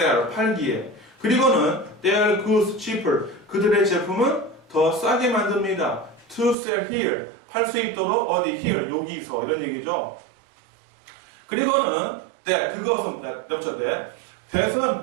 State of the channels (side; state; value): left; drops out; at 6.6 s